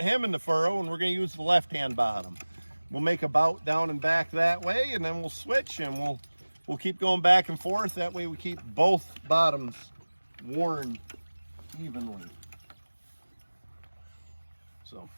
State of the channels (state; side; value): inverted; both; correlation -1.00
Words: in the furrow and we're going to use the left-hand bottom. We'll make a bout down and back that way, and then we'll switch and we'll keep going back and forth. That way we keep both bottoms worn evenly. So